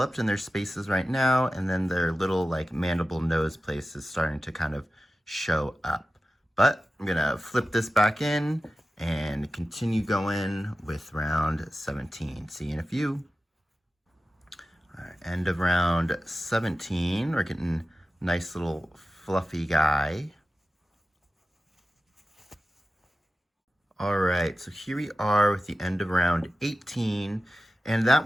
in their spaces right now, and then their little like mandible nose place is starting to kind of show up. But I'm gonna flip this back in and continue going with round 17. See you in a few. All right, end of round 17. We're getting a nice little fluffy guy. All right, so here we are with the end of round 18. And that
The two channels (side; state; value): both; normal; correlation 0.94